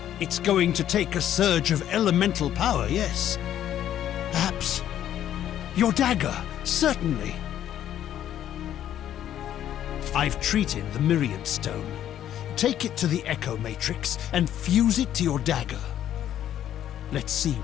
It's going to take a surge of elemental power, yes. Perhaps your dagger, certainly. I've treated the Myriad Stone. Take it to the Echo Matrix and fuse it to your dagger. Let's see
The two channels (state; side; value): quieter; right; 11.1 dB